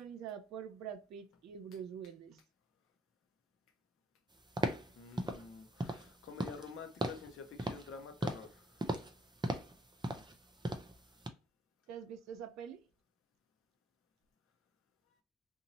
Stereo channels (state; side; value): normal; both; correlation 0.68